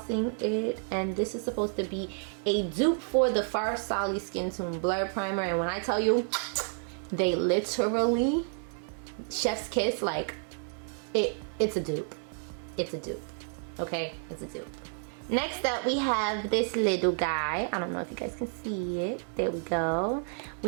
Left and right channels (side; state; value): left; silent; 58 dB below the other